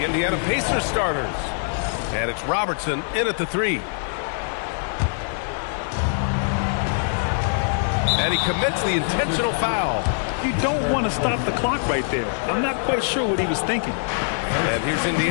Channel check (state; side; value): silent; right; digital silence